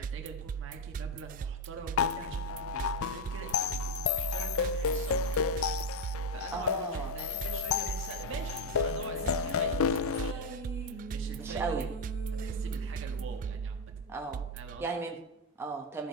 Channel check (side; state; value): both; normal; correlation 0.05